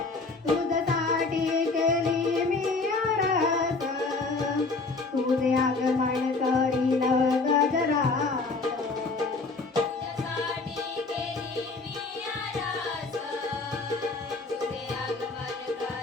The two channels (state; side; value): quieter; right; 3.8 dB